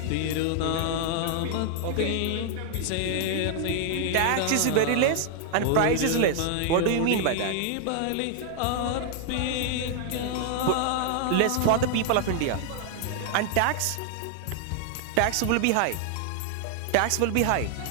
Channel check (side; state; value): both; different; correlation 0.00